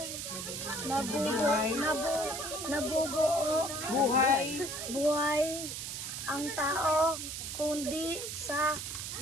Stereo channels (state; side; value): noise; right; hiss, 6 dB below the sound